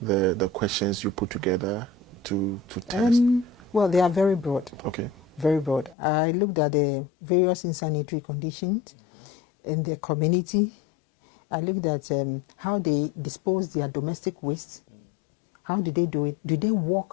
questions you put together to test? Well, they are very broad. Okay. Very broad. I looked at the various insanitary conditions in the community. I looked at how they dispose their domestic waste. How do they do it? Do they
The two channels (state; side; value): drops out; right; at 6.0 s